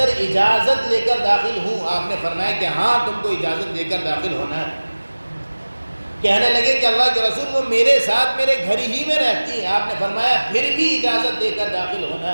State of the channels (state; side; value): inverted; both; correlation -1.00